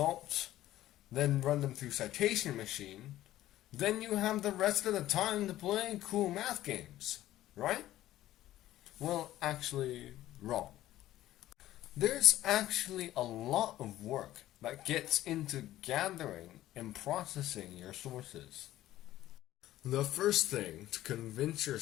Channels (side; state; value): right; quieter; 14.4 dB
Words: then run them through citation machine. Then you have the rest of the time to play cool math games, right? Well, actually, wrong. There's actually a lot of work that gets into gathering and processing your sources. The first thing to convince